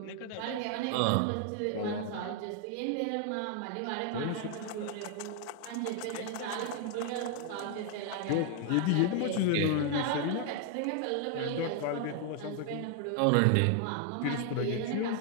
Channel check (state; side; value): different; both; correlation 0.00